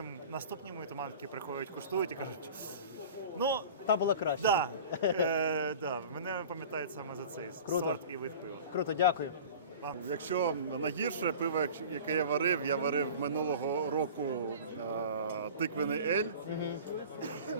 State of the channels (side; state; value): both; inverted; correlation -0.39